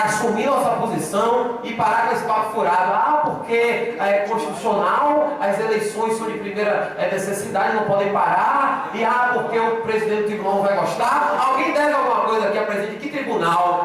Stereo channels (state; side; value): identical; both; correlation 1.00